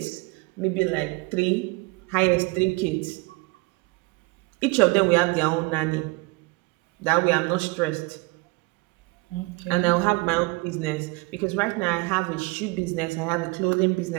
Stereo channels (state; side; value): quieter; left; 25.6 dB